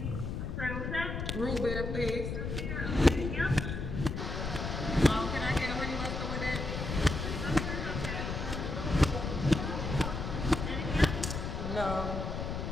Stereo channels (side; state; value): left; noise; rumble, 4 dB below the sound